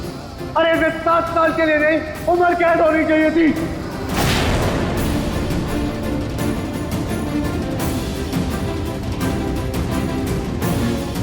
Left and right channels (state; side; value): identical; both; correlation 1.00